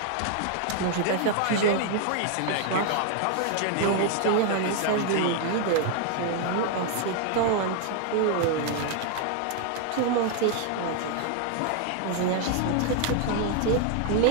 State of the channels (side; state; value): both; different; correlation 0.01